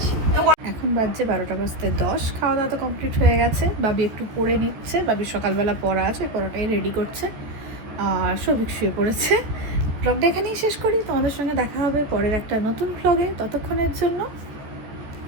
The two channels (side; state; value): left; late; 14 ms